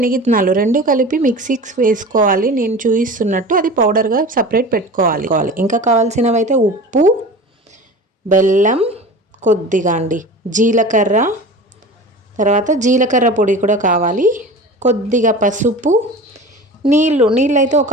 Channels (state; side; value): normal; both; correlation 0.35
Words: రెండు కలిపి మిక్సీకి వేసుకోవాలి. నేను చూపిస్తున్నట్టు అది పౌడర్గా సపరేట్ పెట్టుకోవాలి. ఇంకా కావాల్సినవి అయితే ఉప్పు, బెల్లం, కొద్దిగా జీలకర్ర, తర్వాత జీలకర్ర పొడి కూడా కావాలి, కొద్దిగా పసుపు, నీళ్ళు అయితే ఒక